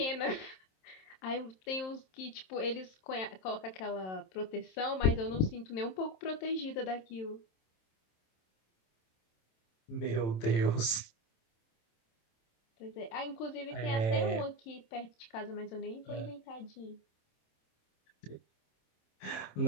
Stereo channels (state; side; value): late; right; 27 ms